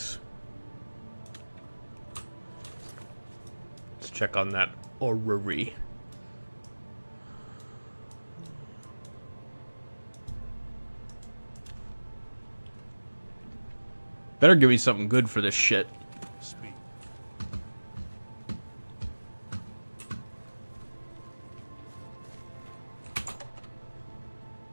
Let's check on that orrery. Better give me something good for this shit. Speak.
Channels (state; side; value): inverted; both; correlation -1.00